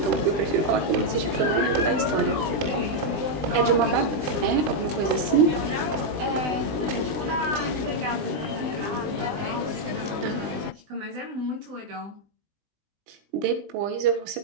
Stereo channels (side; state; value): left; late; 20 ms